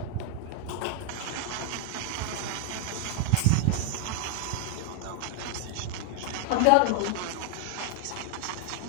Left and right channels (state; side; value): different; both; correlation 0.00